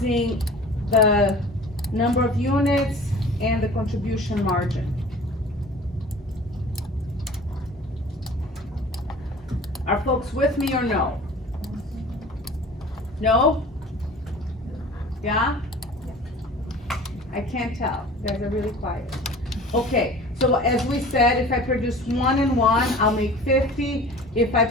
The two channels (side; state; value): both; normal; correlation 0.43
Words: the number of units and the contribution margin. Are folks with me or no? No? Yeah? I can't tell. You guys are really quiet. Okay, so as we said, if I produce 1 and 1, I'll make 50. If I